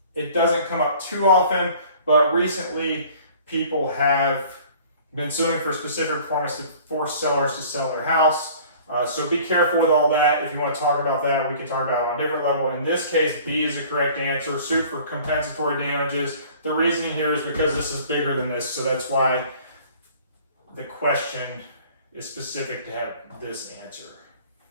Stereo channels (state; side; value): inverted; both; correlation -0.49